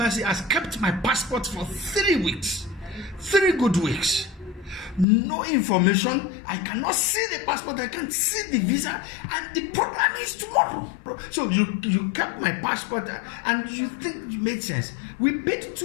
has kept my passport for 3 weeks. 3 good weeks. No information. I cannot see the passport. I can't see the visa. And the program is tomorrow. So you kept my passport and you think it made sense. We paid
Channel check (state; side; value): drops out; right; at 5.1 s